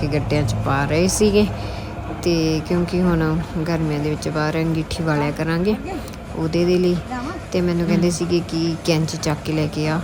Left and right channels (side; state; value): both; identical; correlation 1.00